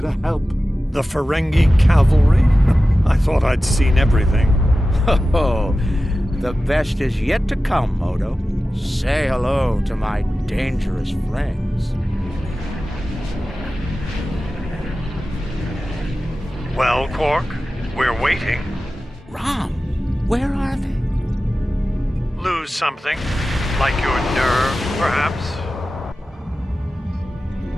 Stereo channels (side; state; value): both; normal; correlation 0.94